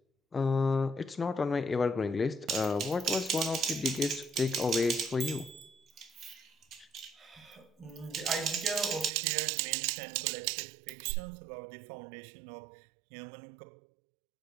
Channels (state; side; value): drops out; left; at 9.1 s